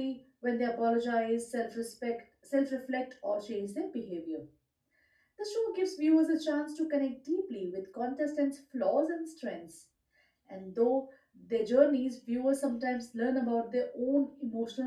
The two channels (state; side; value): identical; both; correlation 1.00